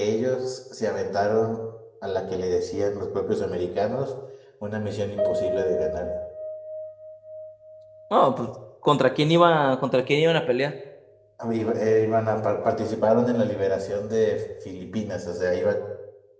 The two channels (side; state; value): both; identical; correlation 1.00